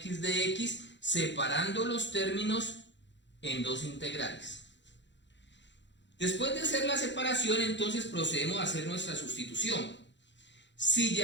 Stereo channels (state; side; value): late; right; 0.52 ms